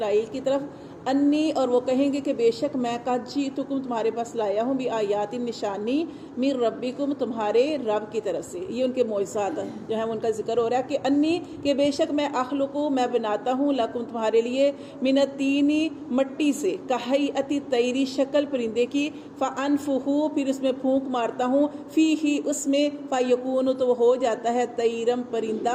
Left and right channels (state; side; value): identical; both; correlation 1.00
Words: کی طرف، انی اور وہ کہیں گے کہ بے شک میں قد جئتکم تمہارے پاس لایا ہوں بآیات نشانی من ربکم تمہارے رب کی طرف سے۔ یہ ان کے معجزات جو ہیں ان کا ذکر ہو رہا ہے کہ انی کہ بے شک میں اخلقو میں بناتا ہوں لکم تمہارے لیے من الطینی مٹی سے کہیئۃ الطیر شکل پرندے کی، فانفخو پھر اس میں پھونک مارتا ہوں فیہ اس میں، فیکون تو وہ ہو جاتا ہے طیرم